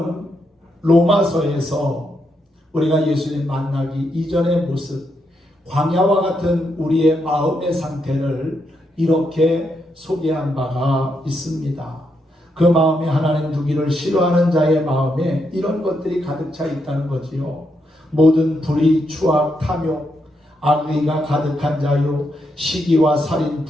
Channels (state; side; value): normal; both; correlation 0.80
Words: 로마서에서 우리가 예수님 만나기 이전의 모습, 광야와 같은 우리의 마음의 상태를 이렇게 소개한 바가 있습니다. 그 마음에 하나님 두기를 싫어하는 자의 마음에 이런 것들이 가득 차 있다는 거지요. 모든 불의, 추악, 탐욕, 악의가 가득한 자요, 시기와 살인,